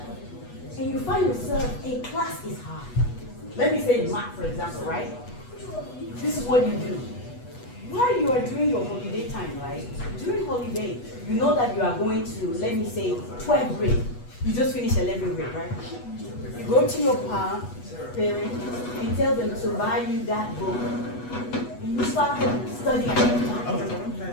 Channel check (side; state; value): right; late; 8.2 ms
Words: and you find yourself, a class is hard. Let me say math, for example, right? This is what you do. While you are doing your holiday time, right? During holiday, you know that you are going to, let me say, 12th grade. You just finished 11th grade, right? You go to your parent, and tell them to buy you that book. And you start studying at that